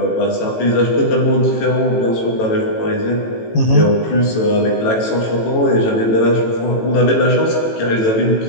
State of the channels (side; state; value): right; late; 18 ms